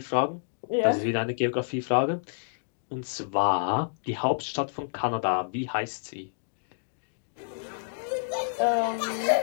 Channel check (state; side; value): silent; right; digital silence